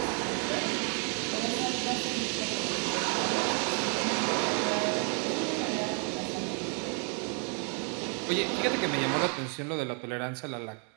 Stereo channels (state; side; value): quieter; left; 39.7 dB